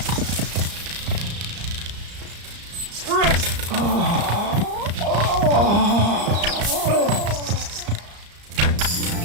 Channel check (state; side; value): late; left; 34 ms